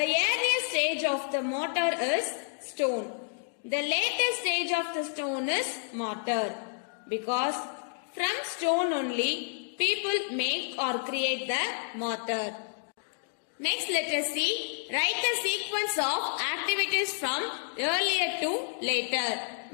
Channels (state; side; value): silent; right; digital silence